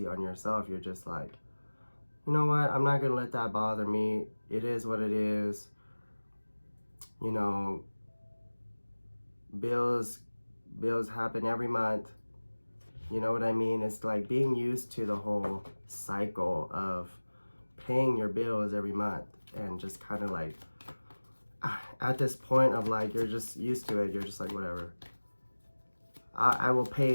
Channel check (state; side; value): inverted; both; correlation -1.00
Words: on yourself. You're just like, you know what, I'm not gonna let that bother me. It is what it is, you know. Bills happen every month, You know what I mean? It's like being used to the whole cycle of paying your bills every month and just kind of like at this point of like you're just used to it. You're just like, whatever. I will pay